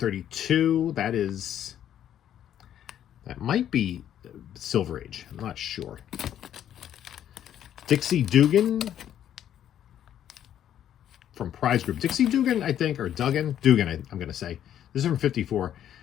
That might be Silver Age. I'm not sure. Dixie Dugan from Prize Group. Dixie Dugan, I think, or Dugan, I'm going to say. This is from 54.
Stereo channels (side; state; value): right; quieter; 10.5 dB